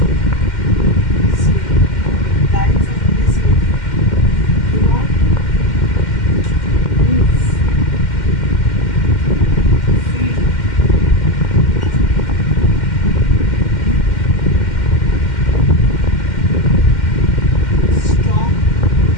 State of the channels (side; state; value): right; late; 2.1 ms